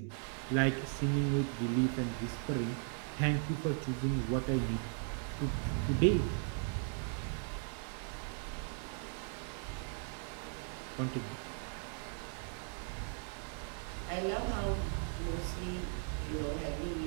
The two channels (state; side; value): silent; left; 53 dB below the other